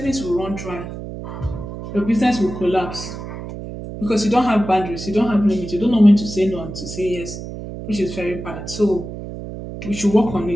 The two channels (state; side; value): noise; right; hum, 9 dB below the sound